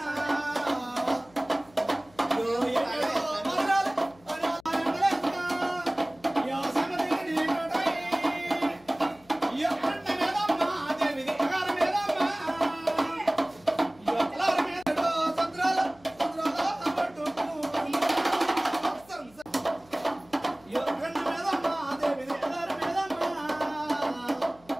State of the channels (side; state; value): left; noise; hum, 28 dB below the sound